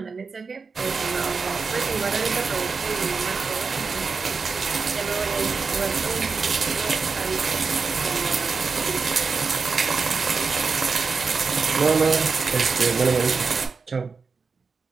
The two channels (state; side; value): quieter; left; 4.8 dB